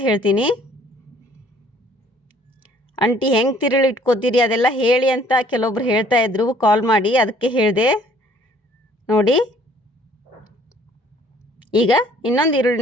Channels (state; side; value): normal; both; correlation 0.58